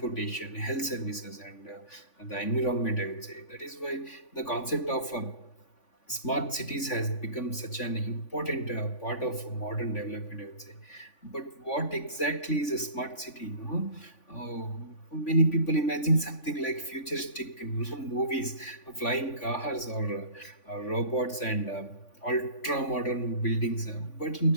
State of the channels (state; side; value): late; right; 3.5 ms